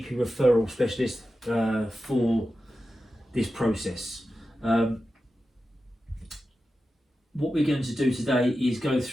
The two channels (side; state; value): both; normal; correlation 0.92